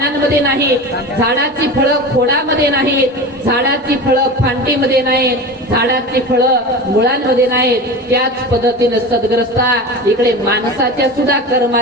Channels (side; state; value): both; normal; correlation 0.30